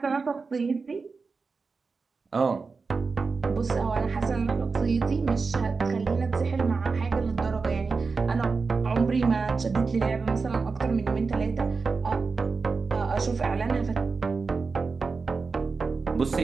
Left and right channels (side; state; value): left; quieter; 4.5 dB